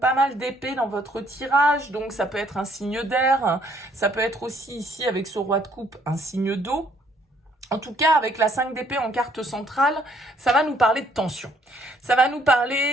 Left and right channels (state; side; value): normal; both; correlation 0.65